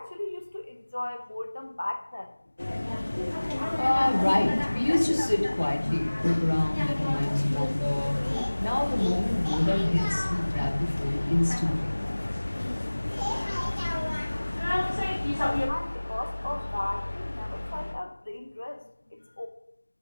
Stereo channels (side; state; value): both; inverted; correlation -1.00